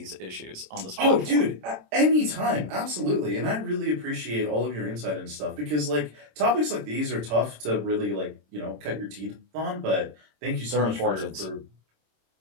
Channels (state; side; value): late; left; 26 ms